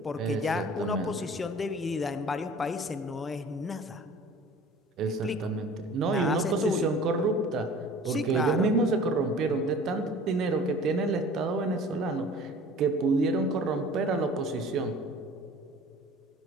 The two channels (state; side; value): normal; both; correlation 0.45